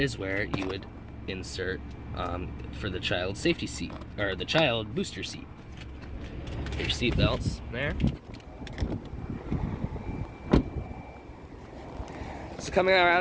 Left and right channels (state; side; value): identical; both; correlation 1.00